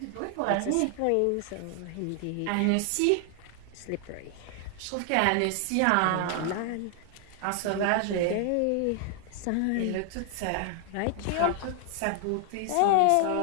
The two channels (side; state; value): both; different; correlation 0.00